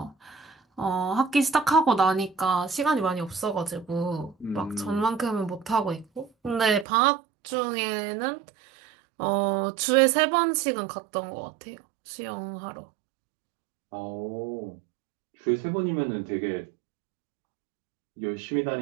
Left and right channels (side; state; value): left; drops out; at 6.9 s